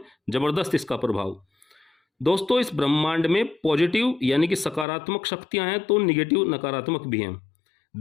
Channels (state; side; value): drops out; right; at 4.9 s